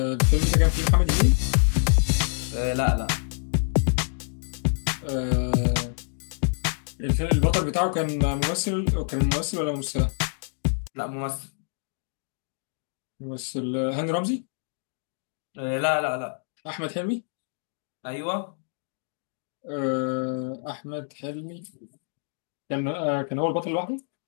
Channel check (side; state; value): right; silent; digital silence